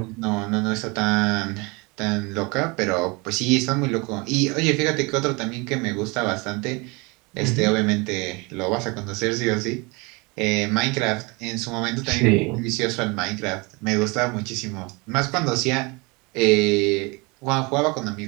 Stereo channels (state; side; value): quieter; left; 27.4 dB